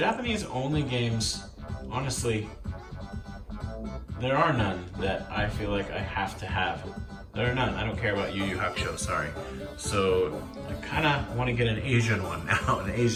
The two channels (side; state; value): both; identical; correlation 1.00